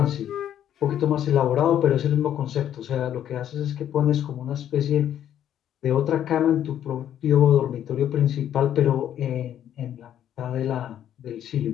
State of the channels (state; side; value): quieter; right; 10.5 dB